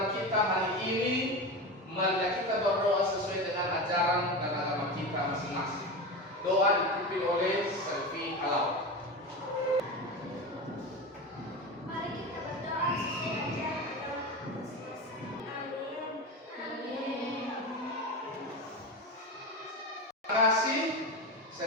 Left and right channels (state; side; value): normal; both; correlation 0.23